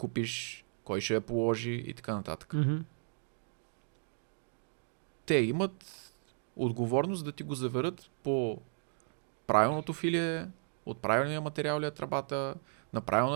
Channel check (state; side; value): silent; left; digital silence